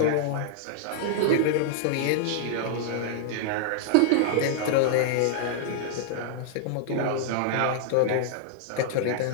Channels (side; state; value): both; different; correlation -0.01